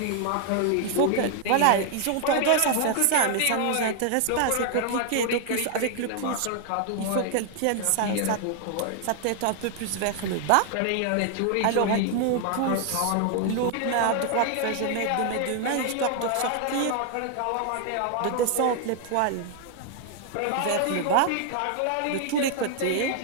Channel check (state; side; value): different; both; correlation 0.00